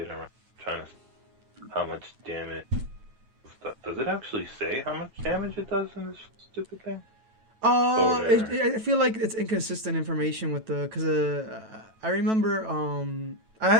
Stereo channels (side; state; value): left; late; 9.1 ms